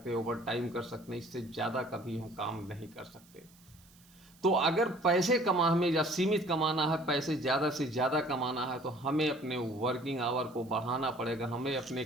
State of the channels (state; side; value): noise; right; hiss, 27 dB below the sound